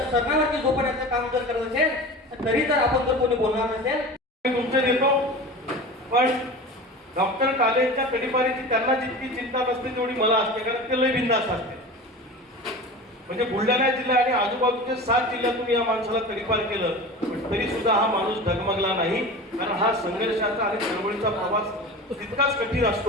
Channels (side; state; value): both; normal; correlation 0.33